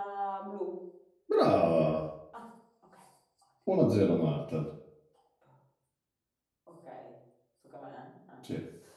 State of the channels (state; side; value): identical; both; correlation 1.00